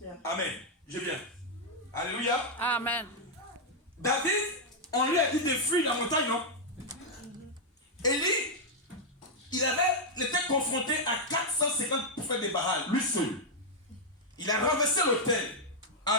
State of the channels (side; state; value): both; normal; correlation -0.03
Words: Amen. Je viens. Alléluia. Amen. David, on lui a dit de fuir la montagne, non? Élie, il était confronté à 450 prophètes de Baal, lui seul. Il a renversé l'autel.